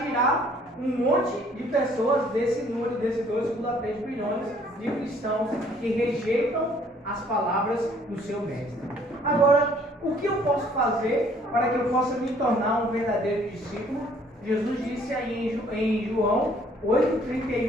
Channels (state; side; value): normal; both; correlation 0.60